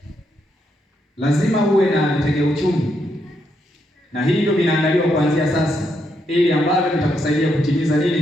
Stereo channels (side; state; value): both; normal; correlation 0.78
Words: Lazima uwe na vitega uchumi, na hivyo vinaandaliwa kuanzia sasa, ili ambavyo vitakusaidia kutimiza